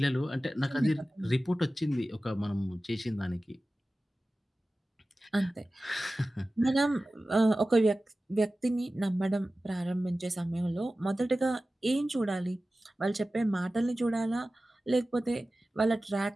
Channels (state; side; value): normal; both; correlation 0.96